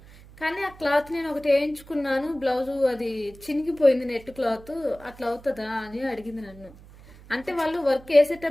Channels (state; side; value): noise; right; hum, 21 dB below the sound